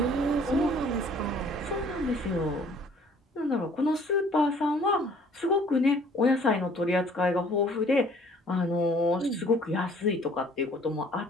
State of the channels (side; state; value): both; normal; correlation 0.55